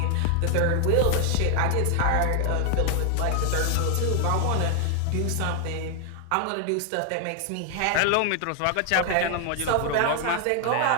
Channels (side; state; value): both; different; correlation 0.00